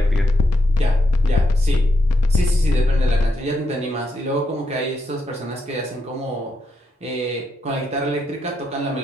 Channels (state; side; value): normal; both; correlation 0.82